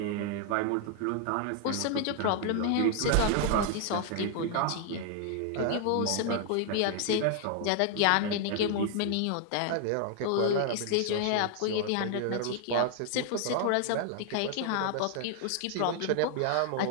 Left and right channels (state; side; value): different; both; correlation 0.00